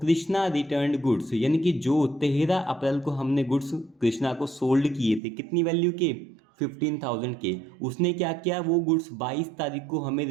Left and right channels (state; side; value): drops out; left; at 5.2 s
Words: रिटर्न गुड्स, यानी कि जो 13 अप्रैल को हमने गुड्स कृष्णा को सोल्ड किए थे, कितनी वैल्यू के? 15,000 के। उसने क्या किया? वो गुड्स 22 तारीख को हमें